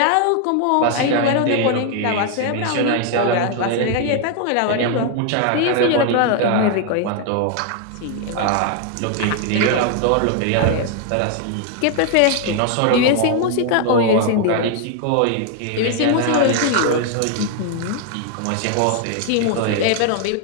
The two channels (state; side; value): different; both; correlation 0.00